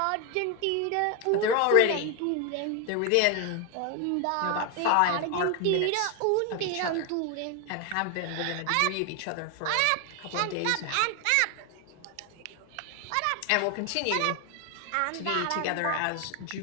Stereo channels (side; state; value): both; different; correlation 0.01